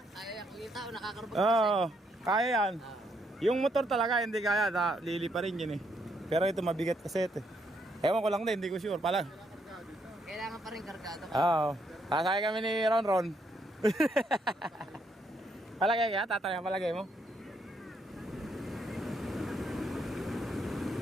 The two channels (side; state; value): both; normal; correlation 0.74